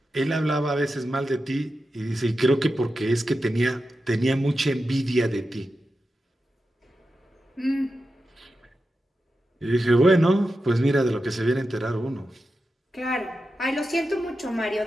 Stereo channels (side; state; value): both; normal; correlation 0.90